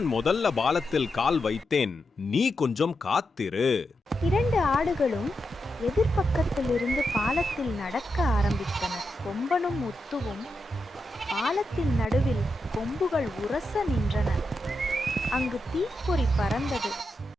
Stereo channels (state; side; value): normal; both; correlation 0.86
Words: முதல்ல பாலத்தில் கால் வைத்தேன். நீ கொஞ்சம் காத்திரு. 2 ஆடுகளும் எதிர்பக்கத்திலிருந்து பாலத்தில் நடக்க ஆரம்பித்தன. கொம்பனும் முத்துவும் பாலத்தின் நடுவில் கொம்புகள் உரச நின்றன. அங்கு தீப்பொறி பறந்தது.